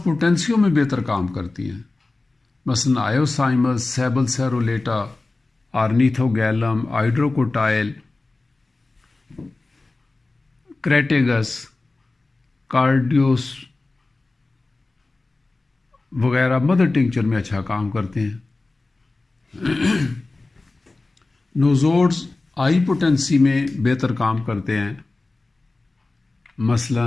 پوٹینسیوں میں بہتر کام کرتی ہیں، مثلا آئیوسائمس، سیبل سیرولیٹا، آرنیتھوگیلم، ہائیڈروکوٹائل، کریٹیگس، کارڈیوس وغیرہ مدر ٹنکچر میں اچھا کام کرتے ہیں۔ نوزوڈز ہائی پوٹینسی میں بہتر کام کرتے ہیں،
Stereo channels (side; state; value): right; quieter; 3.3 dB